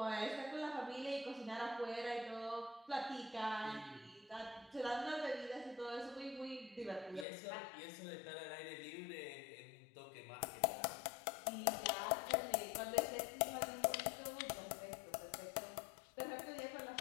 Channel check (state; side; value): drops out; right; at 7.2 s